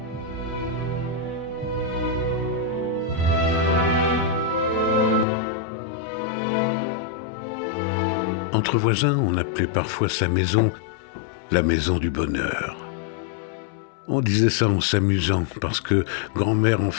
Entre voisins, on appelait parfois sa maison la maison du bonheur. On disait ça en s'amusant parce que grand-mère en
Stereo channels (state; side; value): drops out; right; at 5.2 s